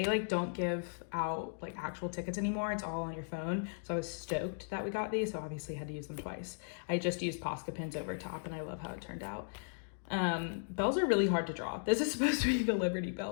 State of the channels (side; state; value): right; silent; digital silence